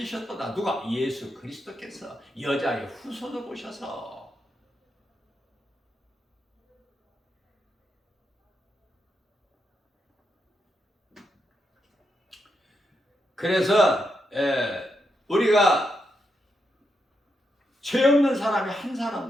누가? 예수 그리스도께서 여자의 후손을 오셔서. 그래서 우리가 죄 없는 사람이 한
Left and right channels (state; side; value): normal; both; correlation 0.83